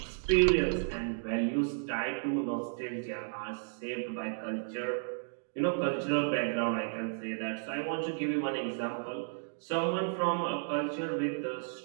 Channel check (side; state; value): left; silent; digital silence